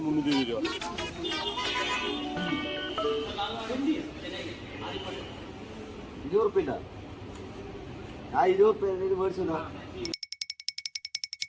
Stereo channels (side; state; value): both; identical; correlation 1.00